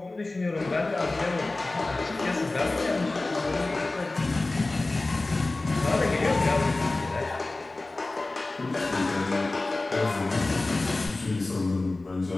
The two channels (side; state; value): right; quieter; 3.1 dB